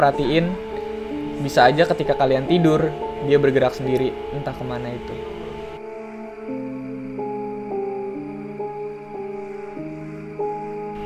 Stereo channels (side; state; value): both; identical; correlation 1.00